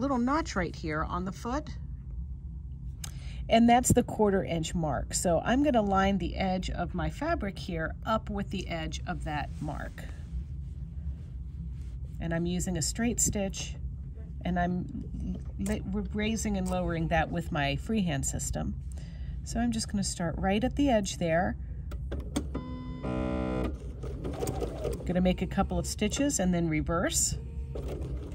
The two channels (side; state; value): both; identical; correlation 1.00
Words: notch right here on the foot, and that's the 1/4 inch mark. So I'm going to line the edge of my fabric here up with the edge of that mark. And I'm using a straight stitch, and I'm raising and lowering that with my freehand system. So I'm just going to start right at the edge there. Going to make a couple of stitches and then reverse.